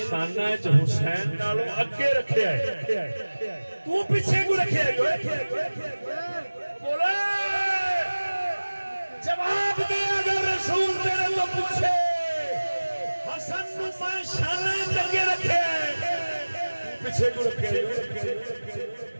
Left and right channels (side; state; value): both; inverted; correlation -1.00